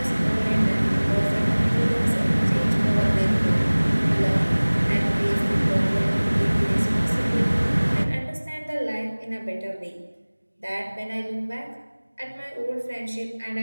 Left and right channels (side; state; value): both; inverted; correlation -1.00